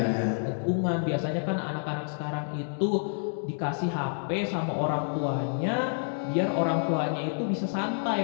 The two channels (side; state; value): right; silent; digital silence